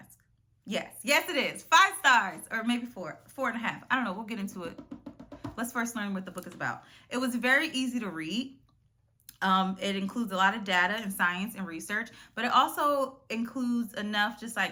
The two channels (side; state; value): both; identical; correlation 1.00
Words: Yes. Yes, it is. 5 stars, or maybe 4.5. I don't know. We'll get into it. Let's first learn what the book is about. It was very easy to read. It includes a lot of data and science and research, but it also includes enough just